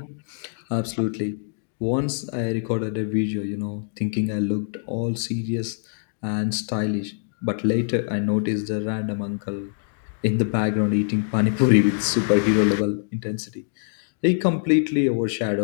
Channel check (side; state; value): right; silent; digital silence